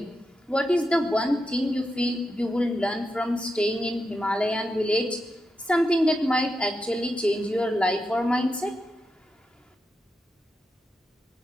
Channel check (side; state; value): both; normal; correlation 0.87